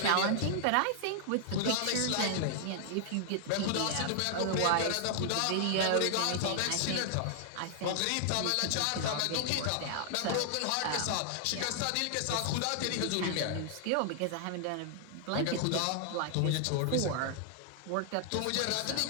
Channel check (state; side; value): different; both; correlation -0.01